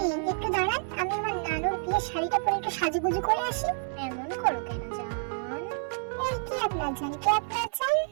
একটু দাঁড়ান, আমি আমার নানুর বিয়ের শাড়িটা পরে একটু সাজুগুজু করে আসি। এমন করো কেন জান? এই কি আপনার জান, কি আপনার জান?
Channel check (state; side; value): silent; left; digital silence